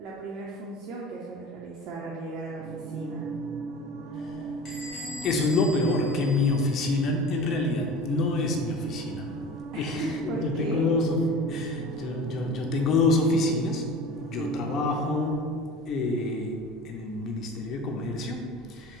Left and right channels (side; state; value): both; normal; correlation 0.37